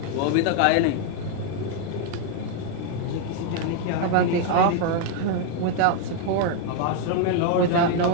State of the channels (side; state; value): both; different; correlation 0.00